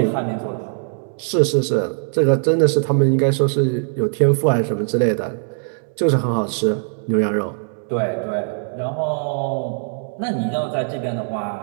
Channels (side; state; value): left; silent; digital silence